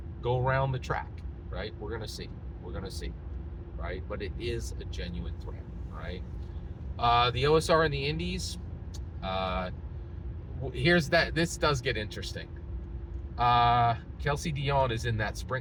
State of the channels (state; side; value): identical; both; correlation 1.00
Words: go around the track, right? We're gonna see, right? But it is a genuine threat, right? The OSR in the Indies, this does get interesting. Kelsey Dion is in that